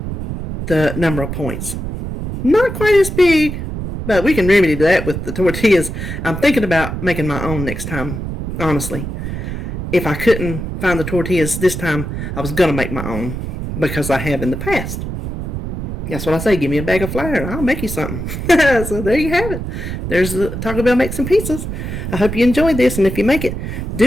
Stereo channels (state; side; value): noise; right; rumble, 5 dB below the sound